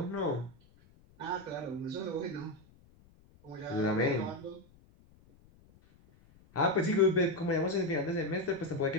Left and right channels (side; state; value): left; noise; rumble, 28 dB below the sound